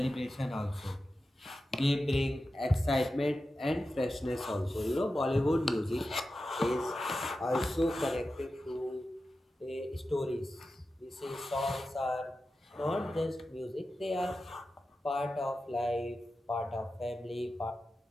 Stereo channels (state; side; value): normal; both; correlation 0.92